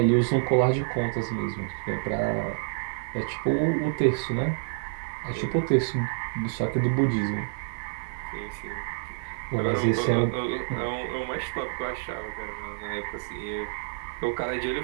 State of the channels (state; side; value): silent; left; digital silence